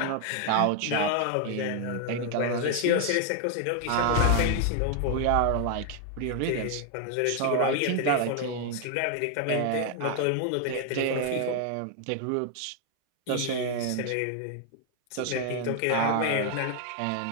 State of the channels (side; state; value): both; different; correlation 0.00